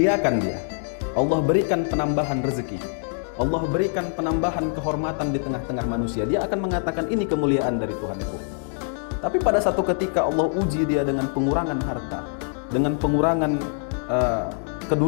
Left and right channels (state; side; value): silent; right; 63 dB below the other